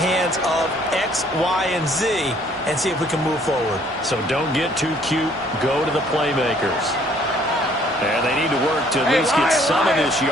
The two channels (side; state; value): both; normal; correlation 0.61